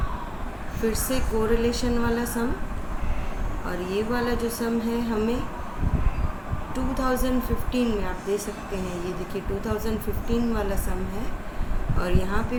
फिर से कोरिलेशन वाला सम। और ये वाला जो सम है हमें 2015 में आप दे सकते हैं। ये देखिए 2015 वाला सम है और यहाँ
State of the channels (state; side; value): identical; both; correlation 1.00